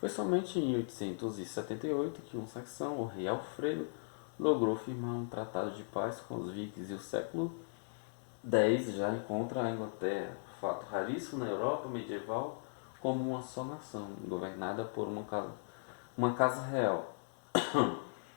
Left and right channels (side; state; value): right; silent; digital silence